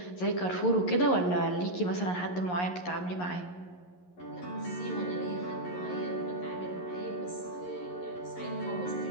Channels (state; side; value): late; right; 11 ms